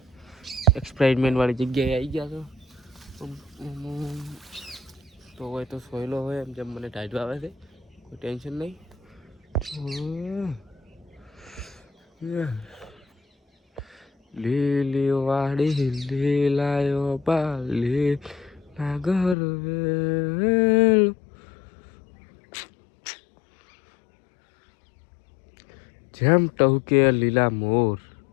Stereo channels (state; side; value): drops out; right; at 19.4 s